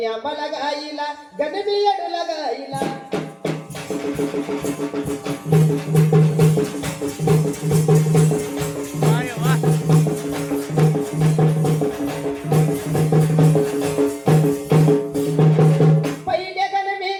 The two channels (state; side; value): identical; both; correlation 1.00